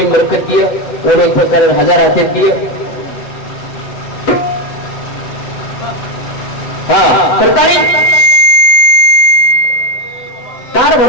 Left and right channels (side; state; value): right; late; 8.0 ms